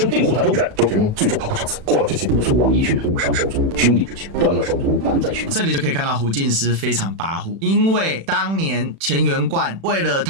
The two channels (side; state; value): left; late; 36 ms